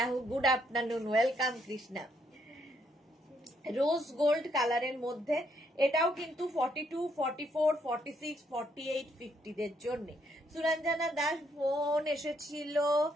good afternoon, welcome Krishna. Rose gold কালারের মধ্যে এটাও কিন্তু 42, 44, 46, 48, 50 দের জন্য। সুরঞ্জনা দাস ফোন এসেছিল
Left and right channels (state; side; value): normal; both; correlation 0.73